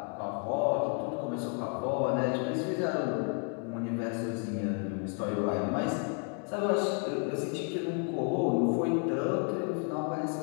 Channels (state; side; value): quieter; right; 39.6 dB